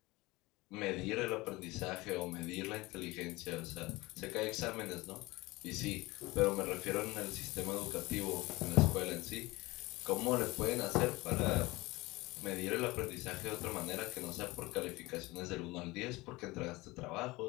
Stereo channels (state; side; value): quieter; right; 21.6 dB